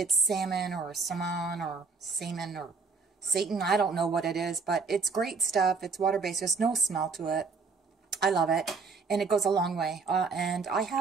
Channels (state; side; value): quieter; left; 4.7 dB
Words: salmon or salmon or salmon or Satan. I don't know what it is, but it's great stuff. It's water-based. There's no smell to it. I love it, and it goes a long way. And I